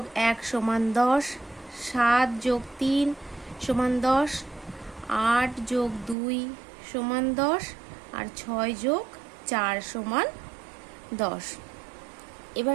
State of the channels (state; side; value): drops out; left; at 6.2 s